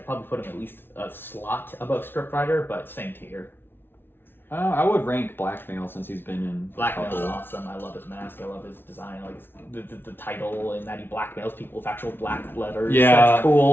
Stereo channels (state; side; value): late; right; 0.11 ms